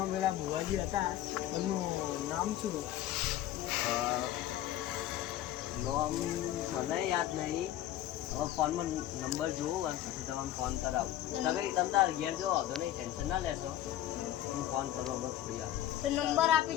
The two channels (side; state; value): right; quieter; 13.0 dB